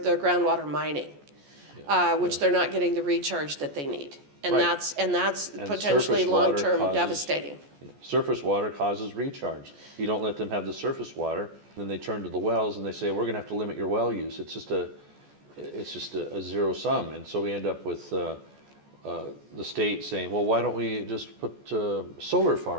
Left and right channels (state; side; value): late; left; 14 ms